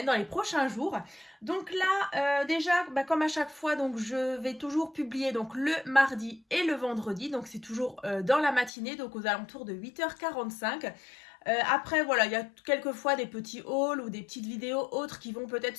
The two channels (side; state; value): right; drops out; at 8.7 s